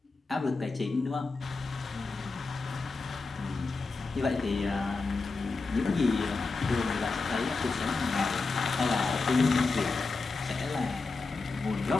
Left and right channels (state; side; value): quieter; right; 3.9 dB